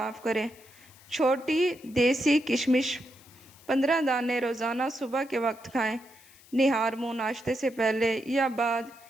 کریں۔ چھوٹی دیسی کشمش 15 دانے روزانہ صبح کے وقت کھائیں۔ نہار منہ ناشتے سے پہلے یا بعد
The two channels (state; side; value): noise; left; hiss, 25 dB below the sound